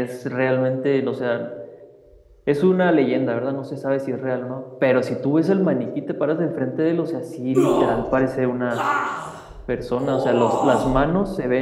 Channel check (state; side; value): identical; both; correlation 1.00